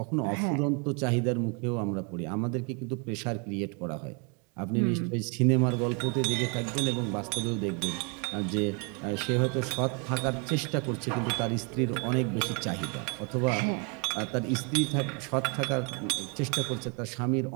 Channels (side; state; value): left; quieter; 34.3 dB